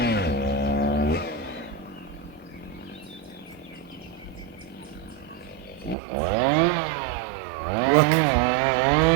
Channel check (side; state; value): left; drops out; at 6.0 s